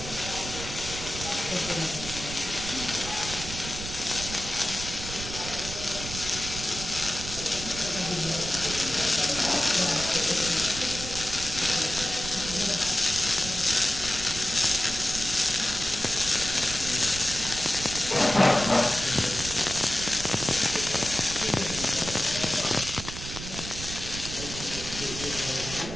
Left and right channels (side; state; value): right; noise; rumble, 9 dB below the sound